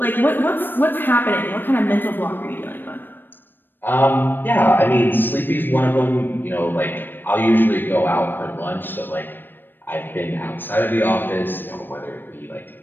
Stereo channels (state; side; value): late; right; 0.094 ms